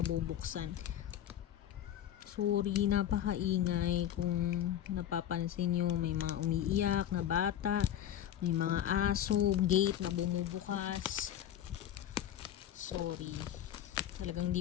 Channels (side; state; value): right; quieter; 10.9 dB